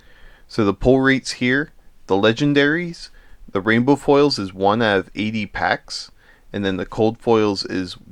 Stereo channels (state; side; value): identical; both; correlation 1.00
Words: So the pull rates here, the legendaries, the rainbow foils is 1 out of 80 packs. And then the cold foils is